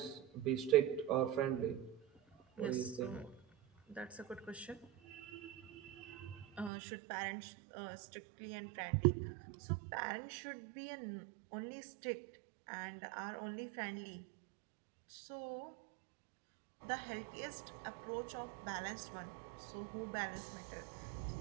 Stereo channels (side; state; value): left; drops out; at 6.7 s